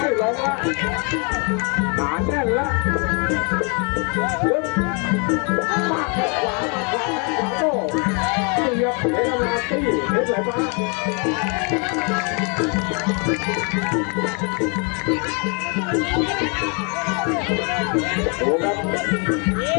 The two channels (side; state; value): right; quieter; 35.1 dB